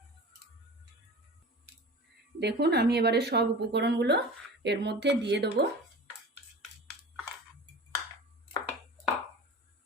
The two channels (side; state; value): both; normal; correlation 0.36